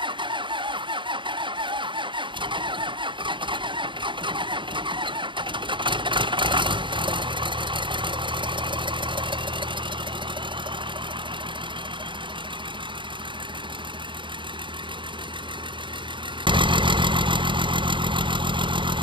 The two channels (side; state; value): left; late; 0.23 ms